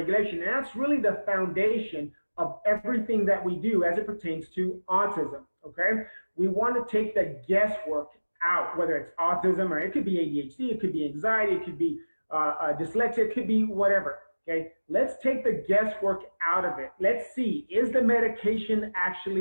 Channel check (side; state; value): both; inverted; correlation -1.00